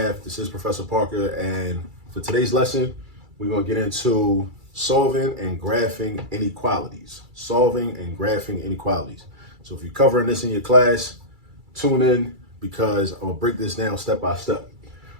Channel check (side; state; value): left; late; 2.3 ms